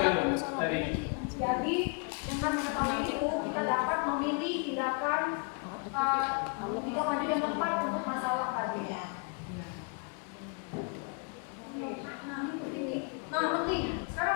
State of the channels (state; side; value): quieter; right; 37.6 dB